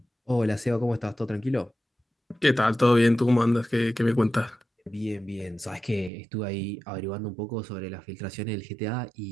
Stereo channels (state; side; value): drops out; left; at 6.1 s